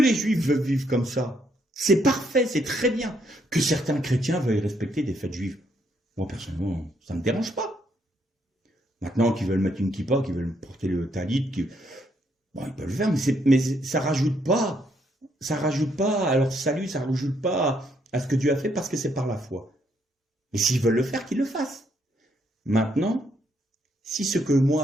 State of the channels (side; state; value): both; normal; correlation 0.73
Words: Juifs veulent vivre comme ça, c'est parfait, c'est très bien. Que certains chrétiens veuillent respecter des fêtes juives, moi personnellement, ça ne me dérange pas. Maintenant, qu'ils veulent mettre une kippa, qu'ils veulent porter le talit, bon, ils peuvent le faire, mais ça rajoute pas à leur salut, ça rajoute pas à ce que Dieu a fait, parce que c'est par la foi. Et s'ils veulent le faire, qu'ils le fassent. Maintenant, si ce que